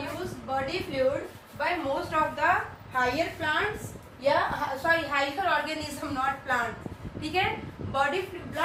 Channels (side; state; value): both; identical; correlation 1.00